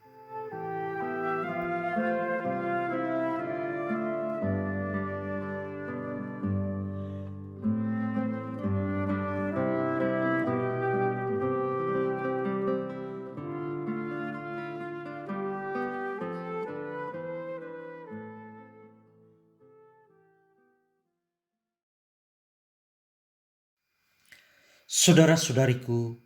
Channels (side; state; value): both; identical; correlation 1.00